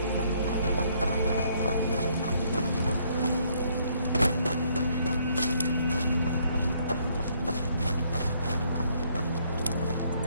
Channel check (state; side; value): inverted; both; correlation -0.67